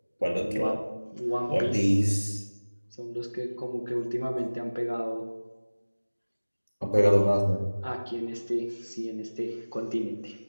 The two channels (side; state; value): both; inverted; correlation -1.00